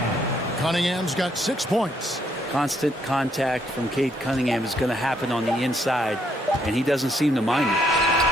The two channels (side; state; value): both; normal; correlation 0.71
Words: Cunningham's got 6 points. Constant contact from Cade Cunningham is going to happen on the inside, and he doesn't seem to mind it.